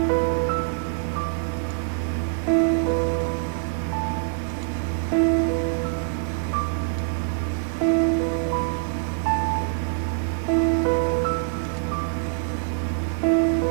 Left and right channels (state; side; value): silent; left; 62 dB below the other